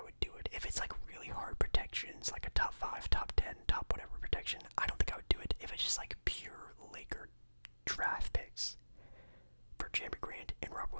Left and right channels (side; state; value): both; inverted; correlation -1.00